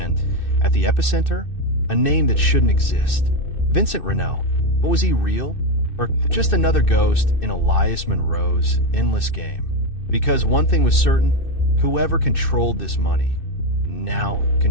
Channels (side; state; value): right; late; 2.6 ms